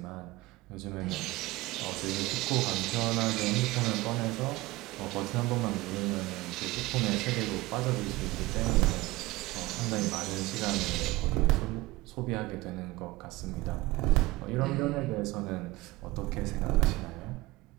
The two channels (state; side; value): quieter; left; 20.0 dB